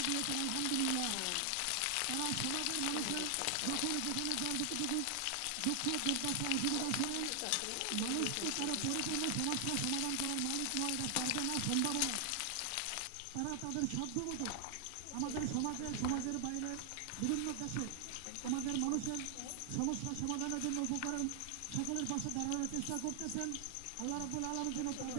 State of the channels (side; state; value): both; different; correlation 0.00